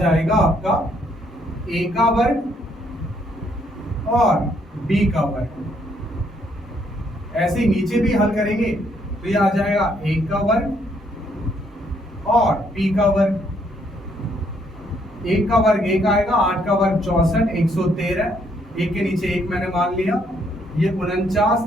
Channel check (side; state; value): both; normal; correlation 0.70